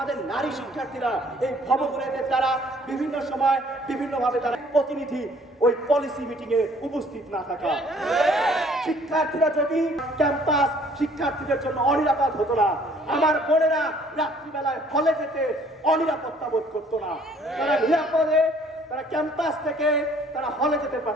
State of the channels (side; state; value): both; normal; correlation 0.58